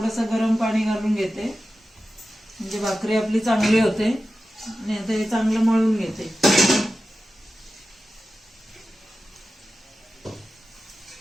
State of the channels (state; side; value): normal; both; correlation 0.93